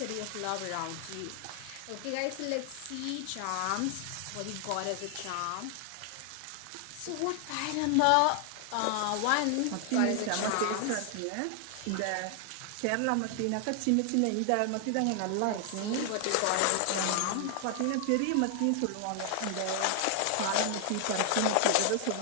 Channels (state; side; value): different; both; correlation 0.00